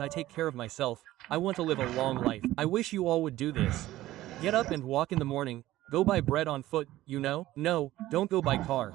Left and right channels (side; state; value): left; quieter; 15.5 dB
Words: I take care of myself. I want to live a long life. I wish you all would do this. Get up and walk in the morning. Go buy bread on foot, you know? No, don't go by car.